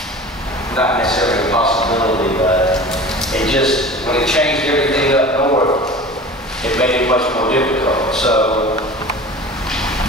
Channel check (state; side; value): normal; both; correlation 0.38